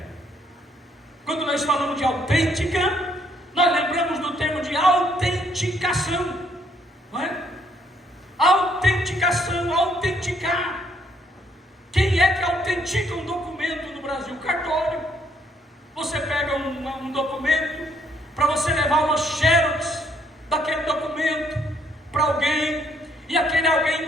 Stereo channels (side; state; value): both; normal; correlation 0.68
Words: Quando nós falamos de autêntica, nós lembramos do termo de autenticação, não é? Autenticação, autenticar. Quem é que autentica um documento no Brasil? Cartório. Você pega um documento, para você levar uma xerox daquele documento para alguém, e aquele